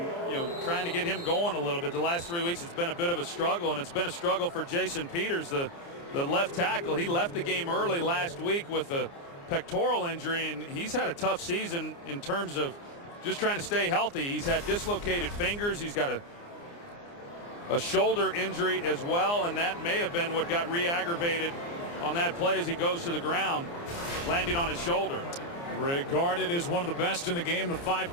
trying to get him going a little bit. The last 3 weeks it's been a bit of a struggle, and it's been a struggle for Jason Peters, the left tackle. He left the game early last week with a pectoral injury, and he's had a tough season in terms of just trying to stay healthy. He's had dislocated fingers. He's got a shoulder injury as well, and that may have been what got re-aggravated on that play as he goes to the ground, landing on his shoulder. Regarded as one of the best in the game, the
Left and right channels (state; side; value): late; right; 29 ms